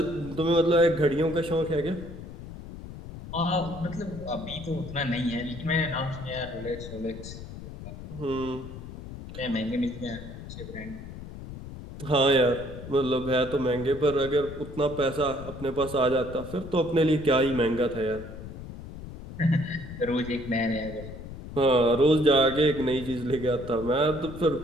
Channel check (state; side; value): noise; left; rumble, 12 dB below the sound